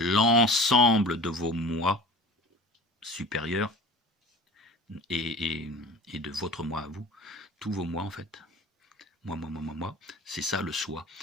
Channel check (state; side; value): normal; both; correlation 0.40